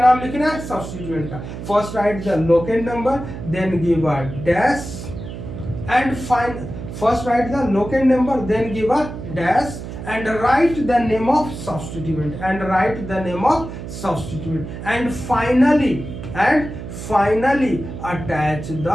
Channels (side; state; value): right; noise; hum, 9 dB below the sound